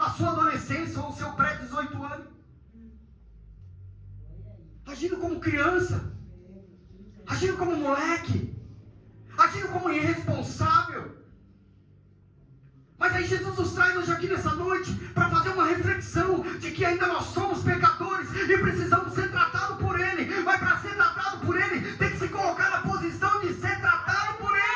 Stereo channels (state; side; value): identical; both; correlation 1.00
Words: sua adolescência ou o seu pré-18 anos. Agindo como criança, agindo como moleque, agindo como irresponsável. Mas aí Jesus nos traz hoje aqui nessa noite para fazer uma reflexão de que ainda nós somos pecadores e precisamos ser tratados por Ele. Mas para ser tratado por Ele, tem que se colocar na posição de ser tratado por